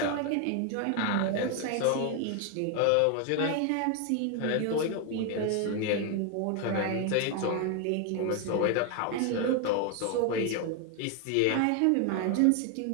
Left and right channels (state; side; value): different; both; correlation 0.01